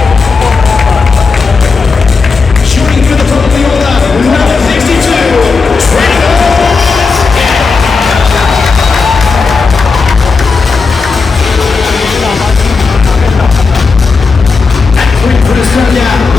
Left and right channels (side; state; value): right; quieter; 4.6 dB